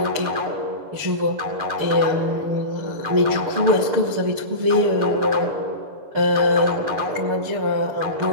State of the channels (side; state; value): left; late; 6.7 ms